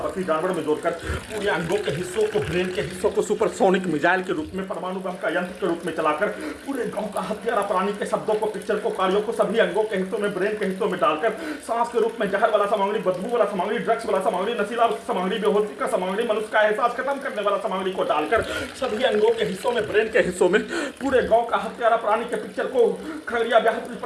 बकरी जानवर में जोड़कर पूरे अंगों के हिस्सों को, ब्रेन के हिस्सों को सुपरसोनिक मिसाइल के रूप में, परमाणु बम का यंत्र के रूप में चलाकर पूरे गांव का हत्यारा प्राणी के शब्दों को, पिक्चर को, कार्यों को सभी अंगों के हिस्सों में, ब्रेन के हिस्सों में डालकर सांस के रूप में जहर वाला सामग्री, बदबू वाला सामग्री, ड्रग्स वाला सामग्री, नशीला सामग्री, बेहोशी का सामग्री, मनुष्य का एहसास खत्म करने वाला सामग्री को डालकर सभी अंगों के हिस्सों में, ब्रेन के हिस्सों में, पूरे गांव का हत्यारा प्राणी के पिक्चर को, खगड़िया बिहार पुलिस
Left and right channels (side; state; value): both; identical; correlation 1.00